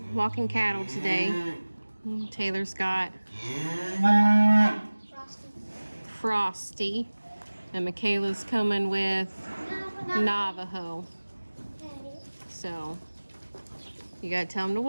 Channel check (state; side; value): inverted; both; correlation -1.00